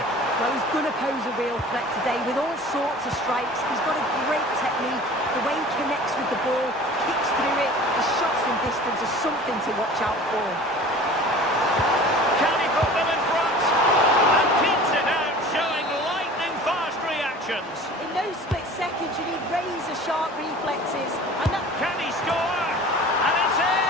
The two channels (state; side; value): normal; both; correlation 0.42